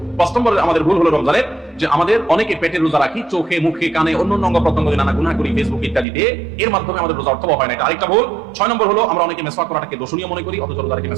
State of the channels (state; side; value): drops out; left; at 6.1 s